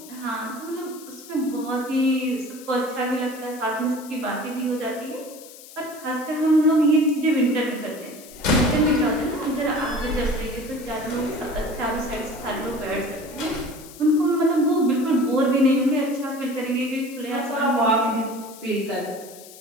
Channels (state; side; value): noise; left; hiss, 18 dB below the sound